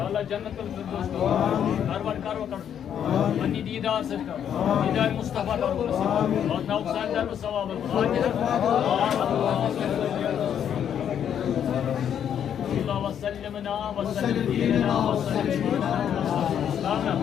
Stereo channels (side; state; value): right; quieter; 9.0 dB